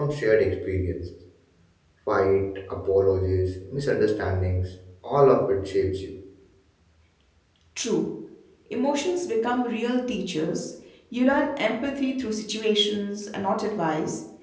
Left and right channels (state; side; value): identical; both; correlation 1.00